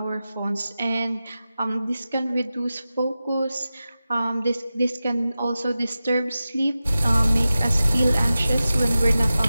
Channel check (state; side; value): inverted; both; correlation -0.94